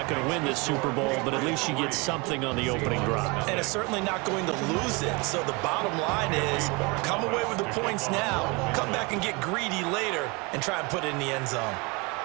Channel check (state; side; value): quieter; left; 27.6 dB